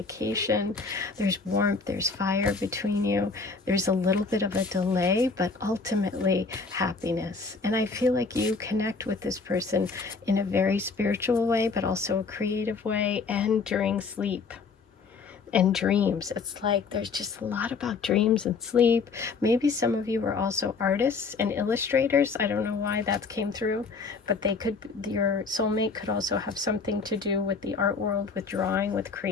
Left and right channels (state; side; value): quieter; right; 4.6 dB